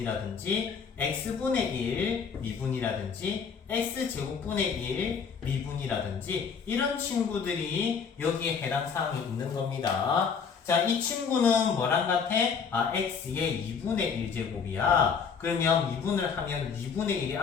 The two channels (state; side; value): quieter; right; 6.2 dB